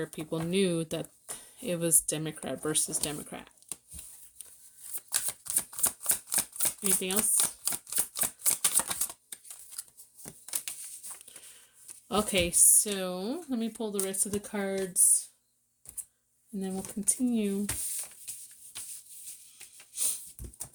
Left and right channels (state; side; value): identical; both; correlation 1.00